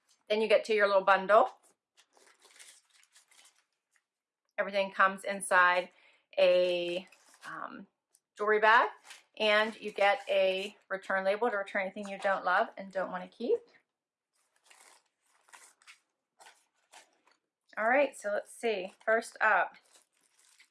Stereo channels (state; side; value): identical; both; correlation 1.00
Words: Then you get to your little bundle. Everything comes inside a jewelry bag. And you get a return label to return anything you don't love and don't want to keep. All right, so let's see. First up,